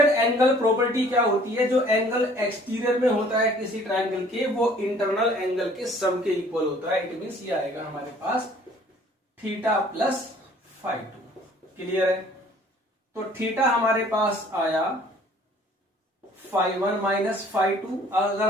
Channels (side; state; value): both; normal; correlation 0.55